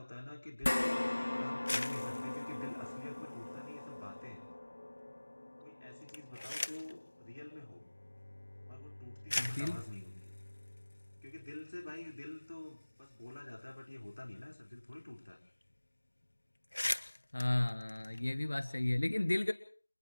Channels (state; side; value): inverted; both; correlation -1.00